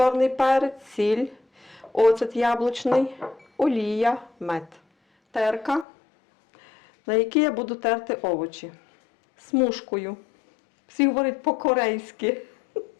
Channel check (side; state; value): right; drops out; at 5.9 s